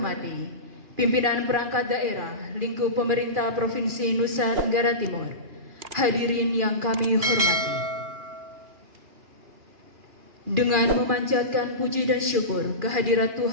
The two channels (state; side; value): late; left; 2.4 ms